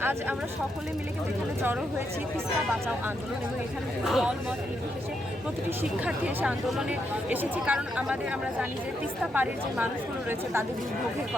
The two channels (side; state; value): both; normal; correlation 0.80